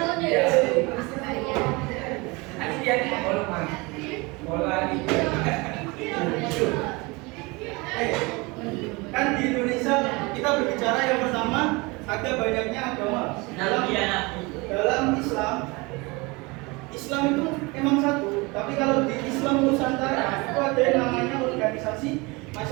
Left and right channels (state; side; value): quieter; left; 25.6 dB